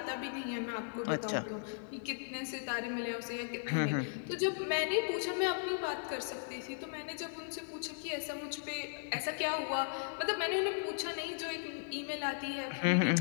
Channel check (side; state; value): right; silent; digital silence